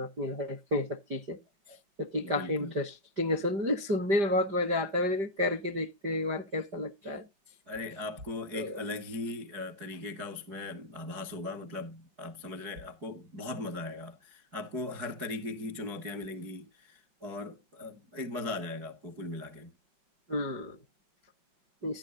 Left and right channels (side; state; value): left; late; 5.0 ms